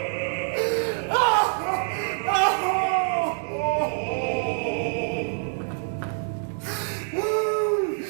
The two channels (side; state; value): left; silent; 61 dB below the other